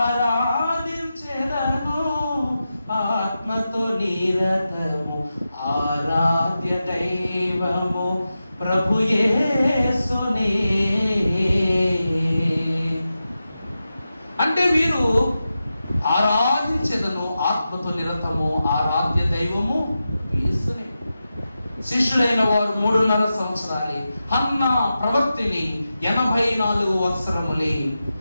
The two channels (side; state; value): both; inverted; correlation -0.91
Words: ఆత్మతో నిరతము ఆరాధ్య దైవము ప్రభు యేసుని. అంటే వీరు ఆరాధించెదను ఆత్మతో నిరతము ఆరాధ్య దైవము యేసుని. శిష్యులైన వారు 3.5 సంవత్సరాలే, హన్నా ప్రవక్తిని 84 సంవత్సరములే.